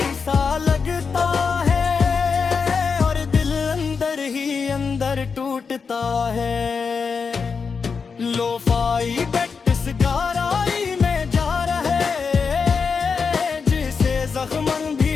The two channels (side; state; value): right; quieter; 5.5 dB